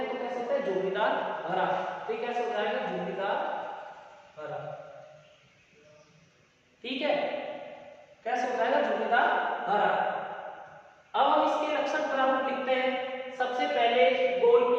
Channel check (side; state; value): both; identical; correlation 1.00